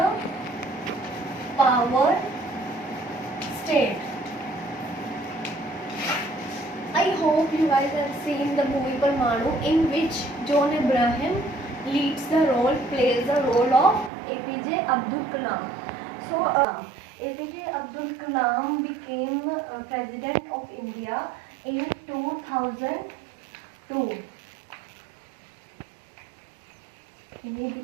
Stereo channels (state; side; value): drops out; left; at 14.1 s